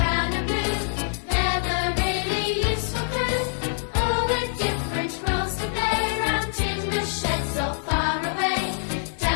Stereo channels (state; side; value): silent; right; 62 dB below the other